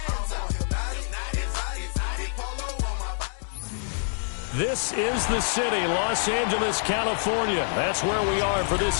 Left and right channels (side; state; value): right; silent; digital silence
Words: This is the city, Los Angeles, California. That's where we are for this